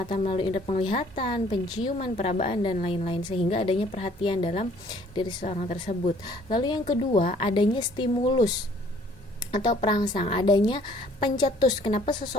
melalui indera penglihatan, penciuman, perabaan dan lain-lain, sehingga adanya perhatian dalam diri seseorang tersebut. Lalu yang kedua, adanya stimulus atau perangsang, adanya pencetus. Kenapa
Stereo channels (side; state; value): both; normal; correlation 0.58